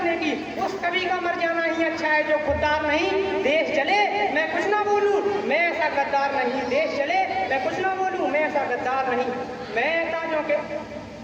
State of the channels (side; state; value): both; identical; correlation 1.00